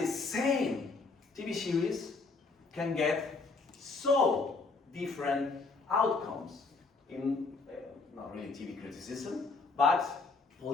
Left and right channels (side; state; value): right; quieter; 4.1 dB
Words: same TV series can get so different outcomes in, not really TV criticism, but